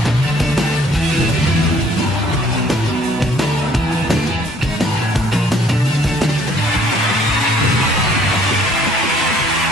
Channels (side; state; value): both; normal; correlation 0.60